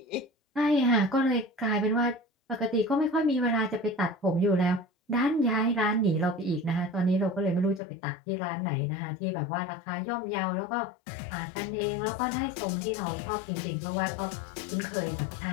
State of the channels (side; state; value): right; drops out; at 7.8 s